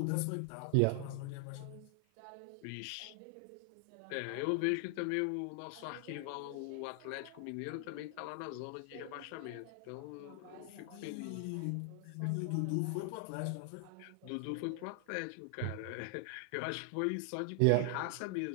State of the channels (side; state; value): both; different; correlation 0.00